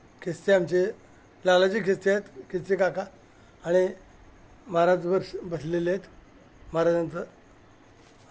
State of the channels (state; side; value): identical; both; correlation 1.00